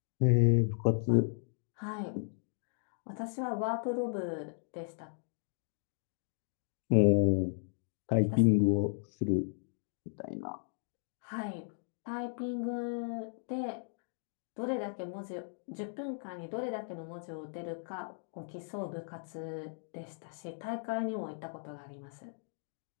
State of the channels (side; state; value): right; silent; digital silence